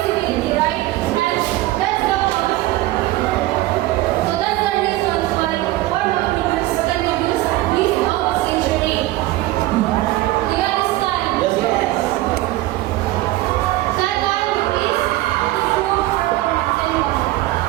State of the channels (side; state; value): left; quieter; 17.1 dB